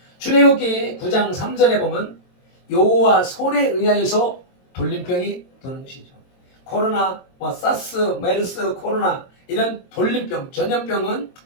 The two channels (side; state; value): right; late; 22 ms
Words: 출애굽기 9장 3절에 보면 여호와 손에 의하여서 돌림병이 도는 것이죠. 코로나, 사스, 메르스, 코로나 이런 돌림병, 전염병은